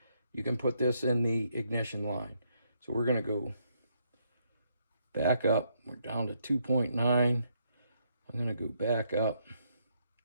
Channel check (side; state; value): both; inverted; correlation -0.74